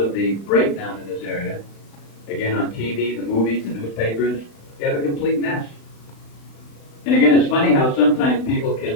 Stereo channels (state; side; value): late; right; 35 ms